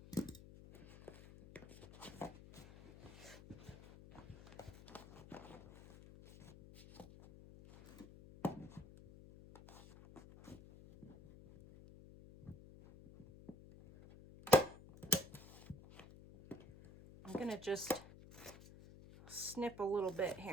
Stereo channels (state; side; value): noise; left; hum, 18 dB below the sound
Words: I'm going to just snip a little bit